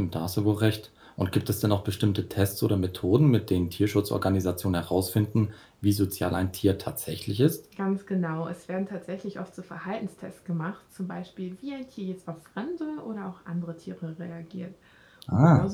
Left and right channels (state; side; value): identical; both; correlation 1.00